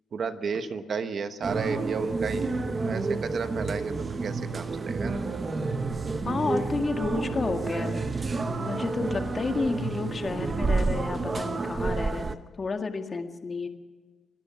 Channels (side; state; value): both; normal; correlation 0.87